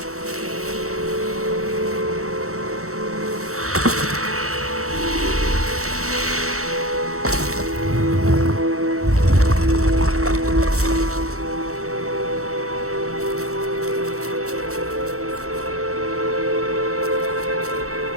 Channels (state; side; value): late; left; 0.64 ms